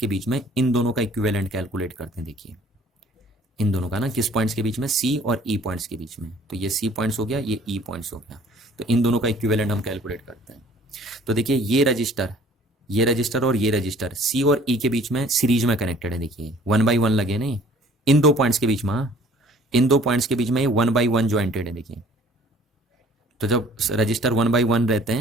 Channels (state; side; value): normal; both; correlation 0.54